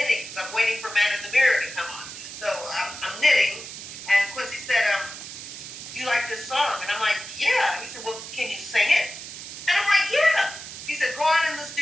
so I'm waiting for Man in the Mirror to come on. So I'm knitting, and Quincy said, "Do you like this song?" And I'm like, "Yeah." He said, "Well, can you sing it?" And I'm like, "Yeah." He said, "Go on in the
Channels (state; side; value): noise; right; hiss, 11 dB below the sound